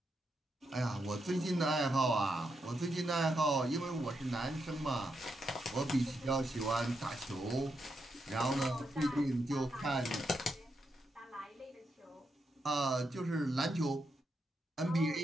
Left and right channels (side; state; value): both; normal; correlation 0.83